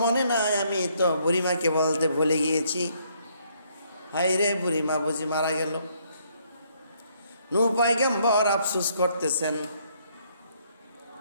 মনে নাই, আমি তো বুড়িমাকে বলতে ভুলে গিয়েছি। হায় রে, বুড়িমা বুঝি মারা গেল। নূহ পয়গম্বর আফসোস করতেছেন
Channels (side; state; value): both; inverted; correlation -0.69